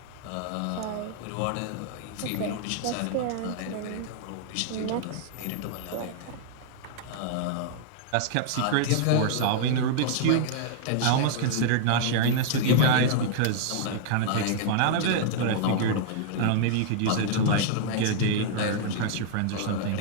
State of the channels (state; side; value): different; both; correlation -0.01